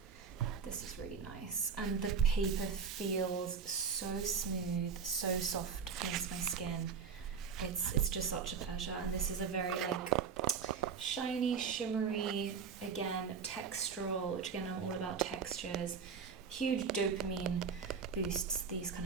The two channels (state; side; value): quieter; left; 6.2 dB